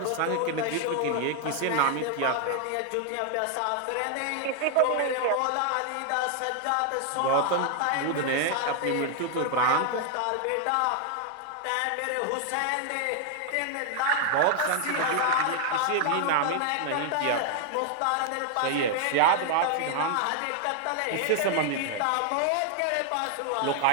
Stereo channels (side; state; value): both; different; correlation 0.00